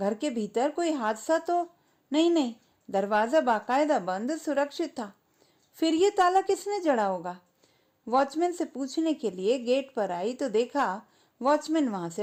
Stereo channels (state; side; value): identical; both; correlation 1.00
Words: के भीतर कोई हादसा तो नहीं? दरवाजा बाकायदा बंद सुरक्षित था। फिर ये ताला किसने जड़ा होगा? वॉचमैन से पूछने के लिए गेट पर आई तो देखा वॉचमैन वहां